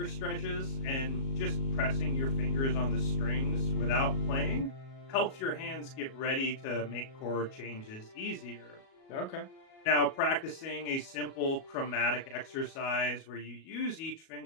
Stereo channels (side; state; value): right; late; 37 ms